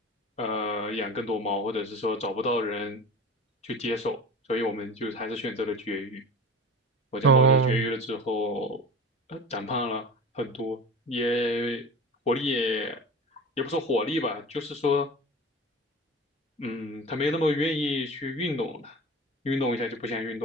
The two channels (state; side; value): normal; both; correlation 0.35